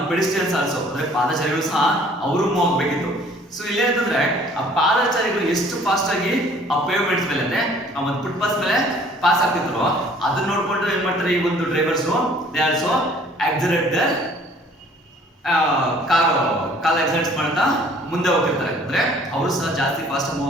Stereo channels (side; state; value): both; normal; correlation 0.55